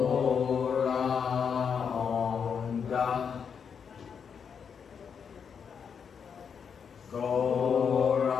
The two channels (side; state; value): right; quieter; 6.8 dB